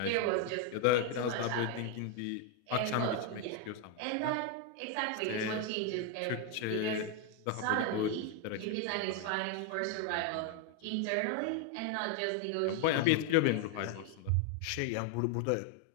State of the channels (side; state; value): both; different; correlation 0.01